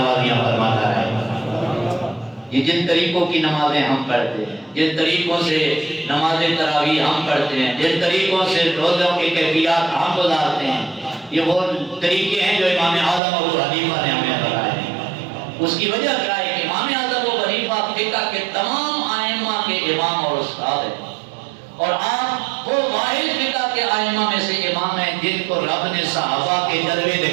فرماتا ہے۔ یہ جن طریقوں کی نمازیں ہم پڑھتے ہیں، جن طریقوں سے نماز تراویح ہم پڑھتے ہیں، جن طریقوں سے روزوں کی کیفیات ہم گزارتے ہیں، یہ وہ طریقے ہیں جو امام اعظم ابو حنیفہ نے ہمیں بتائے ہیں۔ اس کی وجہ کیا ہے کہ امام اعظم ابو حنیفہ فقہ کے تمام ائمہ کے امام اور استاد ہیں، اور آپ وہ واحد فقہ کے ائمہ میں سے امام ہیں جن کو رب نے صحابہ کے جلوے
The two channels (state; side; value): drops out; left; at 13.2 s